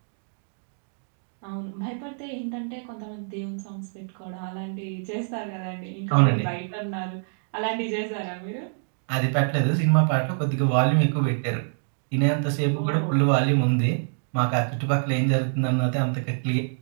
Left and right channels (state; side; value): silent; left; digital silence